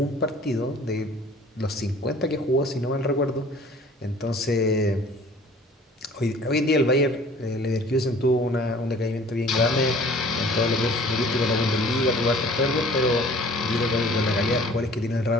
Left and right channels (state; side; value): normal; both; correlation 0.50